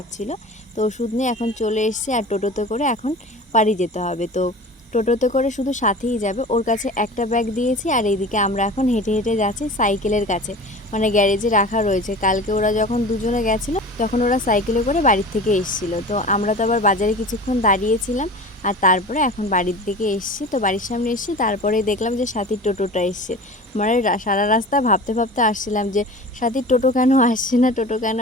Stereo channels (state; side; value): normal; both; correlation 0.37